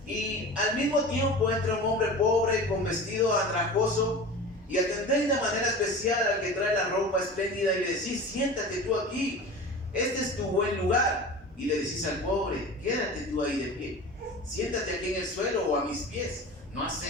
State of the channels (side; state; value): both; normal; correlation 0.34